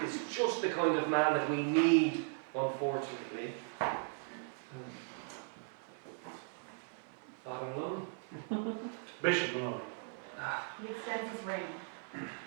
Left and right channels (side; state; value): left; silent; 53 dB below the other